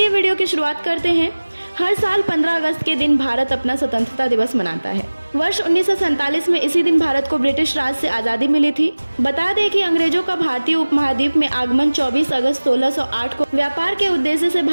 वीडियो की शुरुआत करते हैं। हर साल 15 अगस्त के दिन भारत अपना स्वतंत्रता दिवस मनाता है। वर्ष 1947 में इसी दिन भारत को ब्रिटिश राज से आजादी मिली थी। बता दें कि अंग्रेजों का भारतीय उपमहाद्वीप में आगमन 24 अगस्त 1608 को व्यापार के उद्देश्य से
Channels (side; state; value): both; inverted; correlation -1.00